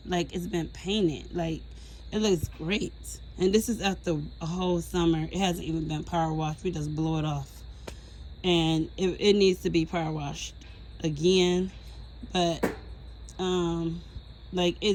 like it's been painted. Like, it looks great. And this is after a whole summer. It hasn't even been power washed. We just blow it off. And it needs to be power washed again. But like,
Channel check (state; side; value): identical; both; correlation 1.00